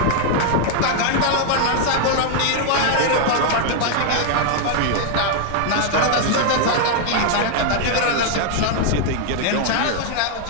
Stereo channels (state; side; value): different; both; correlation 0.00